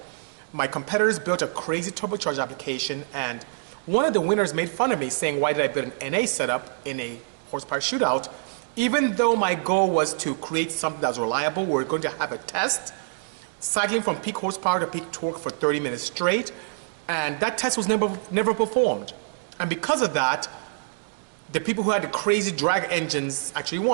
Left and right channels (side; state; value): left; silent; digital silence